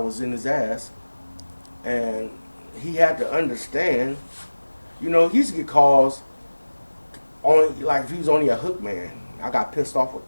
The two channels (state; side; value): inverted; both; correlation -1.00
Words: in his ass, and he had to understand. You know, he used to get calls only like if he was only a hook man. I got pissed off with